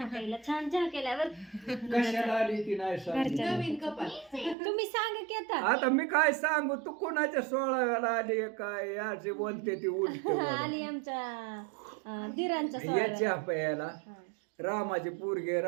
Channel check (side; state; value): left; drops out; at 4.5 s